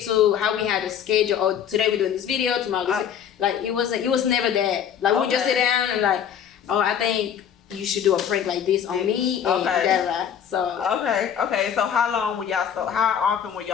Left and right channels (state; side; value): quieter; right; 8.7 dB